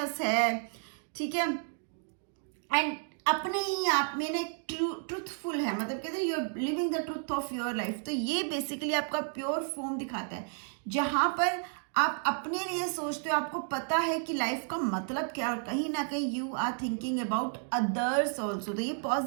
है, ठीक है। एंड अपने ही आप में ना ट्रूथफुल है, मतलब कहते हैं you are living the truth of your life. तो ये बेसिकली आपका प्योर फॉर्म दिखाता है, जहां पर आप अपने लिए सोचते हो, आपको पता है कि लाइफ का मतलब क्या है, और कहीं ना कहीं you are thinking about others also. तो ये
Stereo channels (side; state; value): left; silent; 57 dB below the other